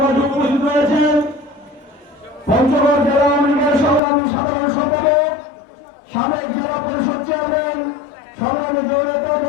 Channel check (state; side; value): drops out; right; at 4.0 s